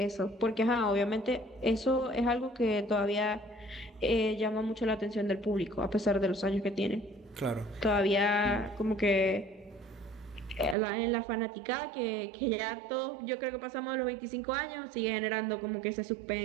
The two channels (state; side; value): drops out; left; at 10.8 s